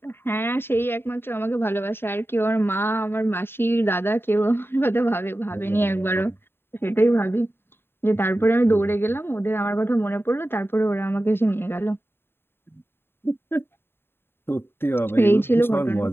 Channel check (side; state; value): right; late; 0.11 ms